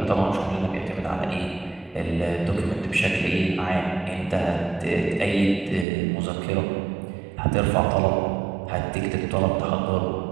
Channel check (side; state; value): left; drops out; at 5.9 s